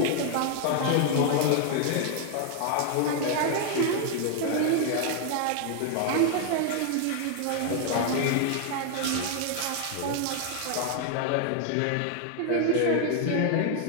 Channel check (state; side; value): different; both; correlation 0.00